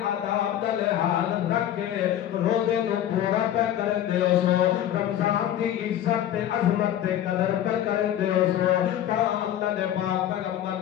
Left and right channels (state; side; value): quieter; right; 11.4 dB